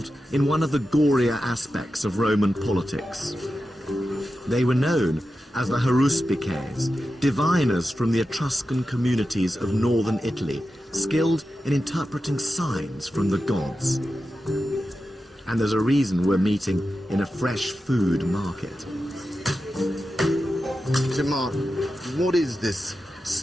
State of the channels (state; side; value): normal; both; correlation 0.91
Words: in one of the gorier aspects of Roman politics. They were known as the haruspices, diviners from the Etruscan communities of northern Italy, skilled in interpreting signs from the gods. And there's a reason we're meeting in a fresh food market. So Mark, what is this